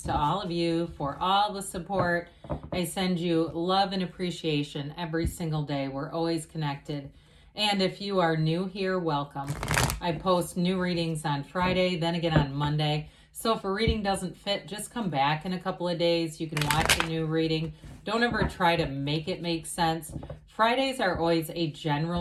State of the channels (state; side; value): identical; both; correlation 1.00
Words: to all of you for all the support. I send you love and appreciation every single day. We're always connected. And if you are new here, welcome. I post new readings on Friday, then again on Monday. So if a reading doesn't fit, just come back in a couple of days. You can watch a new reading. Don't ever try to make it make sense. Fridays are always a